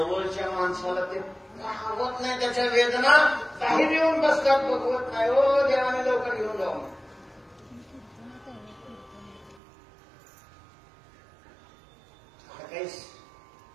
माणसाला ते आवत नाही. त्याच्या वेदना काही येऊन बसतात, बघवत नाही. हो देवाने लवकर घेऊन जाऊ. काही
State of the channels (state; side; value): drops out; left; at 9.6 s